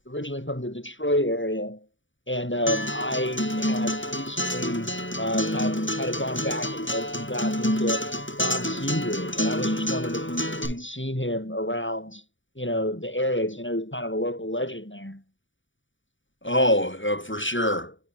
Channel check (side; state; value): right; late; 0.56 ms